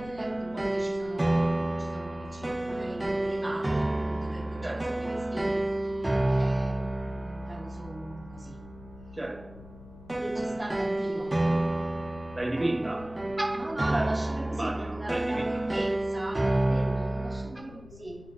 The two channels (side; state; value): left; noise; rumble, 19 dB below the sound